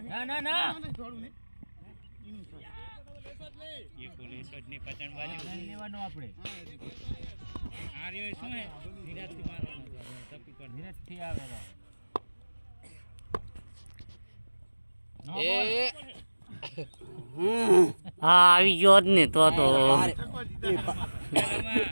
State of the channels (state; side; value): inverted; both; correlation -1.00